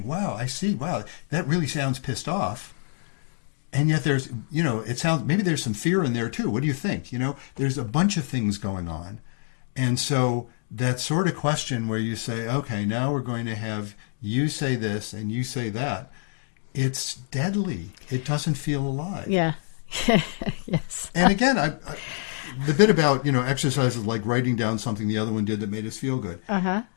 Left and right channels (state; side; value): silent; right; digital silence